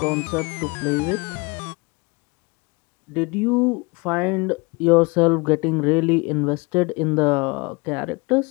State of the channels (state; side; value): quieter; right; 27.5 dB